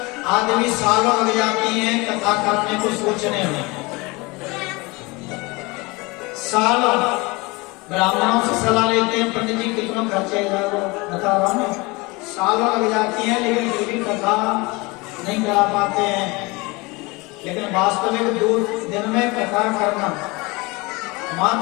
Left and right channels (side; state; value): right; quieter; 24.9 dB